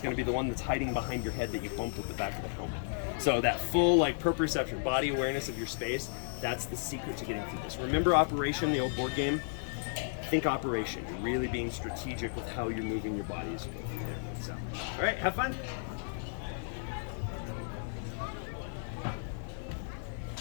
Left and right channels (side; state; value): right; silent; digital silence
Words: going to be the one that's hiding behind your head that you bumped with the back of the helmet. So that full like proprioception, body awareness of your space, that's the secret to getting through this. Remember Operation, the old board game? Think Operation. You're really being strategic with how you're moving your body as you go through there. So, all right, have fun.